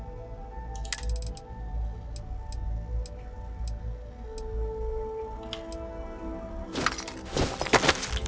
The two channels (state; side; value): identical; both; correlation 1.00